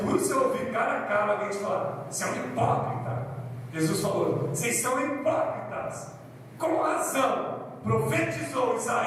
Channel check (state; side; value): identical; both; correlation 1.00